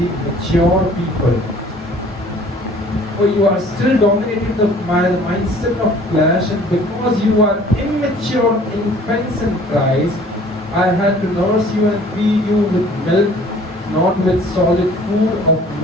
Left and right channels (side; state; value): both; normal; correlation 0.52